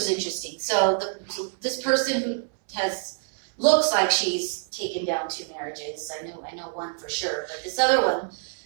interesting. So this person who looks like she's taken down 2 marriages, I know one for sure, but this other one,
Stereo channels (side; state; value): left; silent; 61 dB below the other